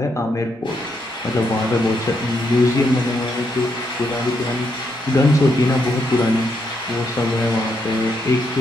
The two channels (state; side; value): normal; both; correlation 0.78